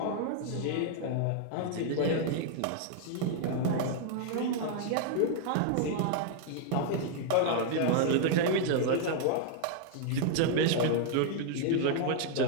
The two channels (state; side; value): different; both; correlation -0.01